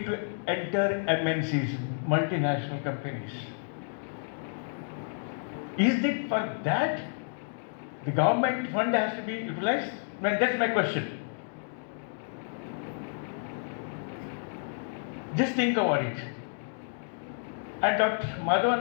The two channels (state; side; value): silent; right; digital silence